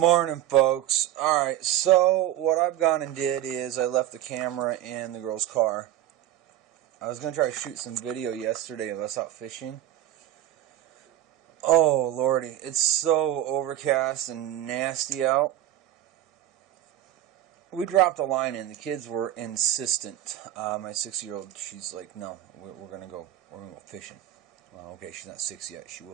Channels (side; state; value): left; quieter; 13.0 dB